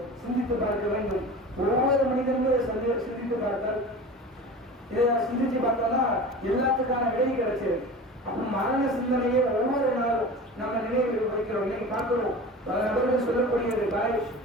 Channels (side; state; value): both; normal; correlation 0.34